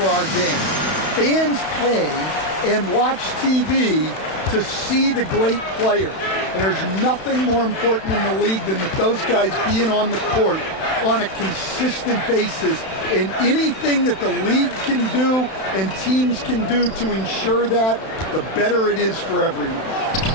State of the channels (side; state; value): right; late; 31 ms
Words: our game. Fans pay and watch TV to see the great players. And there's nothing more important in the league than that those guys being on the court on a consistent basis. And anything that the league can do and teams can do to ensure that, the better it is for everyone.